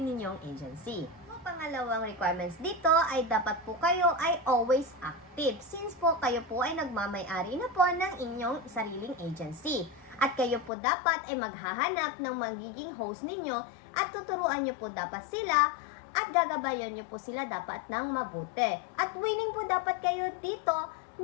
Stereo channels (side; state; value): right; drops out; at 10.7 s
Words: ninyong agency. So, pangalawang requirements dito ay dapat po kayo ay always active since po kayo po ay nagmamay-ari na po ng inyong sariling agency. At kayo po dapat ay maghahanap ng magiging host ninyo at tuturuan niyo po dapat sila at gagabayan niyo po sila dapat ng mabuti. At willing po dapat kayo dito